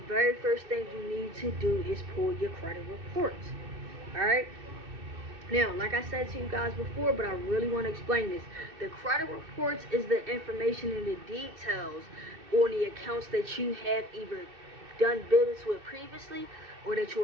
first thing you need to do is pull your credit reports. Alright? Now, like I said to you guys before, but I really want to explain this. The credit reports is the information and the details on the accounts that you have either done business with previously or that you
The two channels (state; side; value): late; left; 2.6 ms